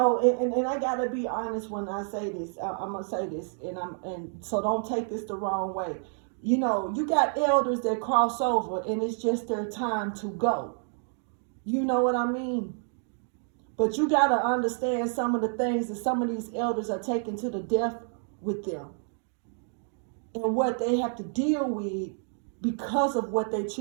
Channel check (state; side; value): silent; left; 59 dB below the other